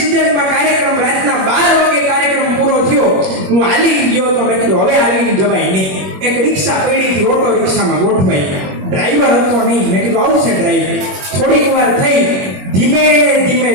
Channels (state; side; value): late; left; 21 ms